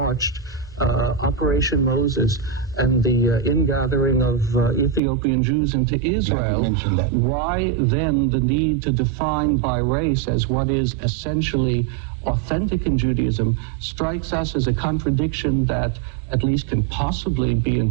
Operation Moses and the ingathering of Ethiopian Jews into Israel, why then the need to define by race as what is essentially authentic in Judaism strikes us as a contradiction that at least can possibly be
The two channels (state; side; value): drops out; left; at 5.0 s